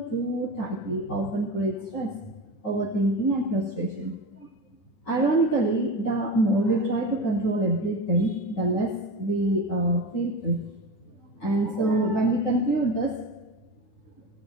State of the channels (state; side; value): late; right; 10 ms